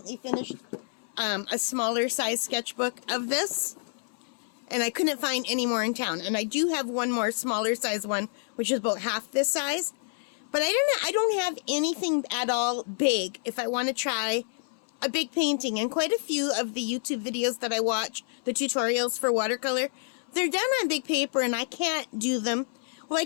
finished a smaller size sketchbook of this, and I couldn't find any more in town. And I do have one more smaller size one, which is about half this size. But I don't have anything at all big if I want to try a big painting. And quite a few of the YouTube videos that I watch, the tutorials for watercolor, they're done on big paper and I can't do them. Well, I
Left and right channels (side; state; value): right; silent; 59 dB below the other